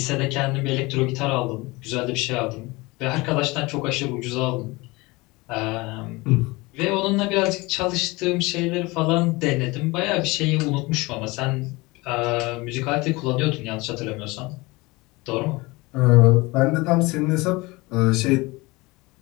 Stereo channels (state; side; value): quieter; right; 23.3 dB